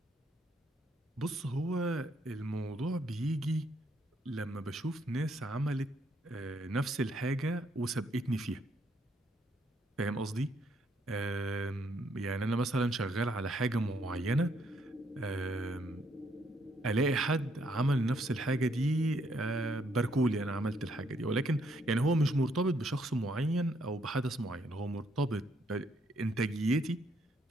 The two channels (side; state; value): both; normal; correlation 0.71